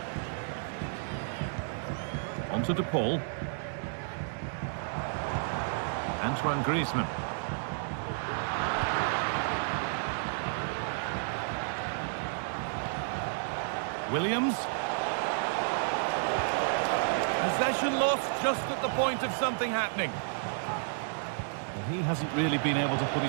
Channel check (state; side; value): silent; left; digital silence